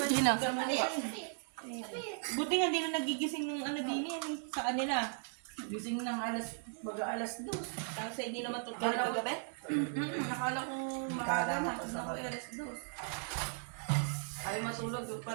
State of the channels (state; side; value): silent; left; 53 dB below the other